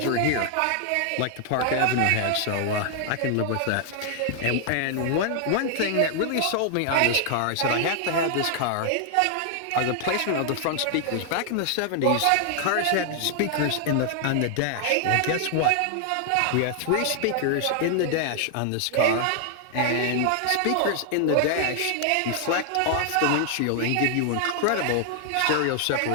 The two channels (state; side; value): different; both; correlation 0.00